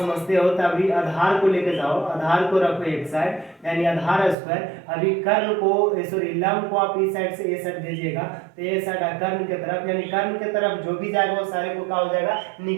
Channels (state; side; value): drops out; left; at 4.4 s